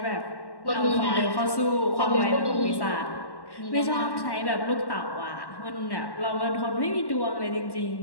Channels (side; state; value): right; late; 1.1 ms